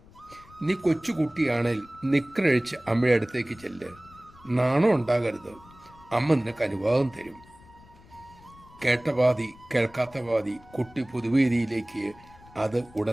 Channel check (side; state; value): left; noise; rumble, 24 dB below the sound